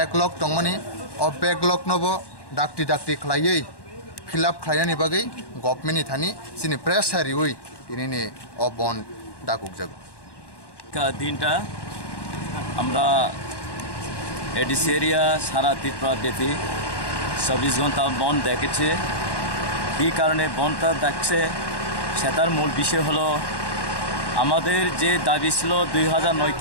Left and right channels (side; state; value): right; late; 1.1 ms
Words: दंमानि अ बेकलग नबो डाक्टी डाक्टी खालायै फिलआप खालायनानि बागै गभर्नमेन्टनि थानि जोंनि प्रेस हारियै दिनैनि अ बन्द दाकुकजागो দিনটা আমরা এডিসি এরিয়া সারা ত্রিপুরা ব্যাপী 24 ঘন্টা বন্ধ দেখেছে এই কারণে বন্ধটা দেখছে সেটার মূল বিষয় হলো আমাদের যে দাবি ছিল